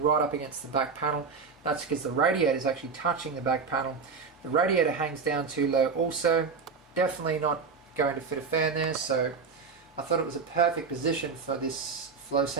right up against the back panel. That's because the radiator is actually touching the back panel. The radiator hangs down too low also. Definitely not going to fit a fan there, so I thought it was a perfect position for this flow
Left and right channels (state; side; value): quieter; left; 5.2 dB